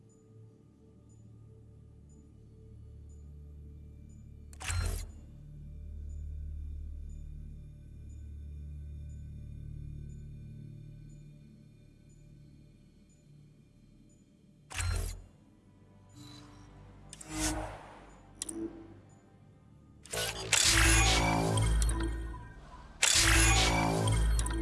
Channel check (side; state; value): both; identical; correlation 1.00